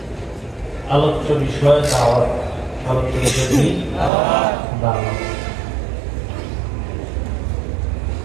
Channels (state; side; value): drops out; left; at 4.1 s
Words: আলোচ্য বিষয় দাওয়াত। আলোচ্য বিষয় কি? দাওয়াত।